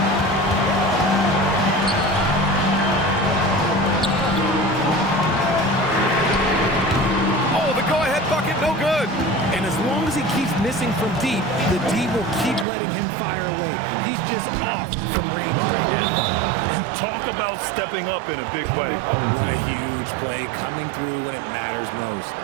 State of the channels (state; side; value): drops out; left; at 12.7 s